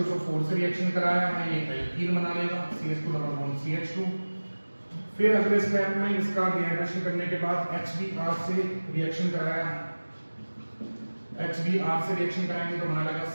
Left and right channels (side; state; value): both; inverted; correlation -1.00